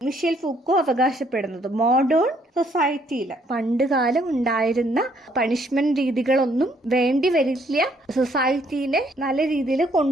മിഷേൽ ഫൂക്കോ അവകാശപ്പെടുന്നത്. മോഡേൺ സൊസൈറ്റിയിൽ പണ്ട് കാലം ഉണ്ടായിരുന്ന പണിഷ്മെന്റ് രീതികളൊന്നും വേണ്ടി വരില്ല സൊസൈറ്റീനെ നല്ല രീതിയിൽ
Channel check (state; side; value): normal; both; correlation 0.67